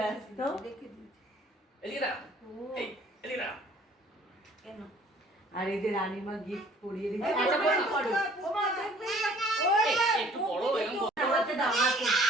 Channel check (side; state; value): both; normal; correlation 0.54